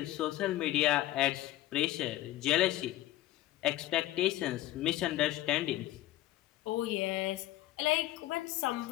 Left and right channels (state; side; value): quieter; right; 15.7 dB